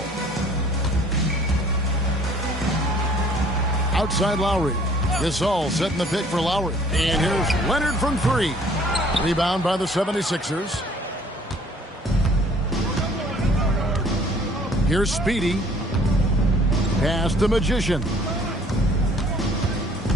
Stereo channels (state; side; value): normal; both; correlation 0.56